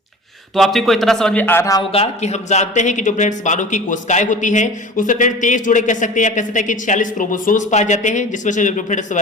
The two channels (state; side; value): normal; both; correlation 0.38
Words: तो आप को इतना समझ में आ रहा होगा कि हम जानते हैं कि जो फ्रेंड्स मानव की कोशिकाएं होती हैं उसमें फ्रेंड्स 23 जोड़े कह सकते हैं, या कह सकते हैं कि 46 क्रोमोसोम्स पाए जाते हैं, जिसमें से जो फ्रेंड्स